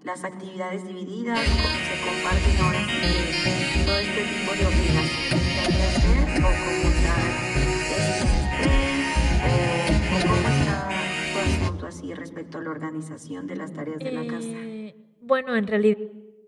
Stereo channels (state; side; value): identical; both; correlation 1.00